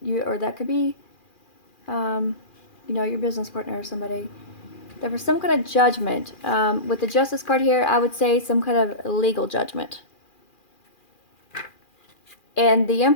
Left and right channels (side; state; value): right; late; 2.4 ms